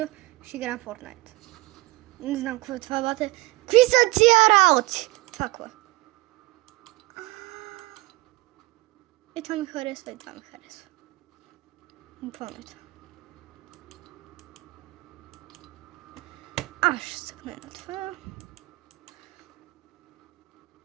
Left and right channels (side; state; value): left; quieter; 21.3 dB